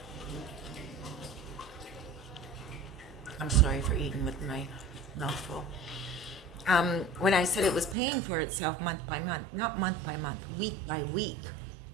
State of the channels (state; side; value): drops out; left; at 8.0 s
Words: I'm sorry for eating with my mouth full. When I said it was paying for itself month by month, not month by month, week by week,